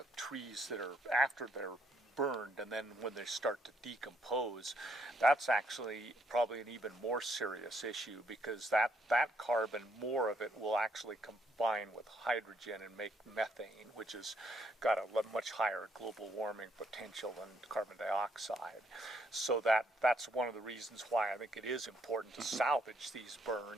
trees that are after they're burned, and then when they start to decompose, that's actually probably an even more serious issue, because that carbon, more of it will actually combine with hydrogen and make methane, which has got a much higher global warming potential than carbon dioxide. So that's one of the reasons why I think it is important to salvage these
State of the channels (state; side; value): normal; both; correlation 0.71